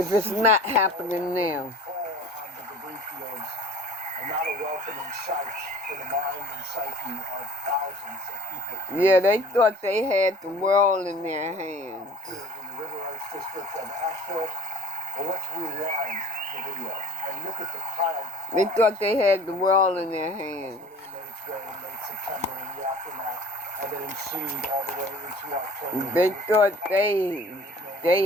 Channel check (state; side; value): normal; both; correlation 0.48